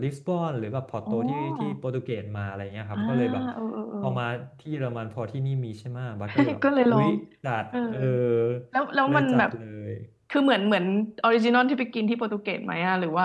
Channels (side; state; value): both; identical; correlation 1.00